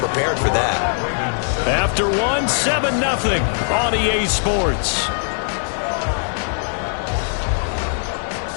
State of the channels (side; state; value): right; silent; digital silence